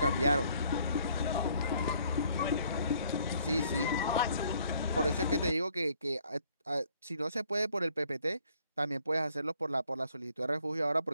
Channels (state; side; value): inverted; both; correlation -0.64